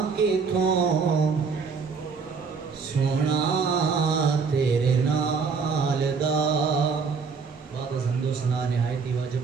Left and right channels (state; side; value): quieter; left; 5.2 dB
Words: کتوں سونا تیرے نال دا۔ بعد از حمد و ثنا نہایت ہی واجب